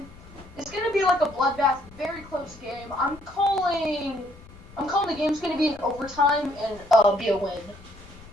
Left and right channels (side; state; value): left; noise; rumble, 21 dB below the sound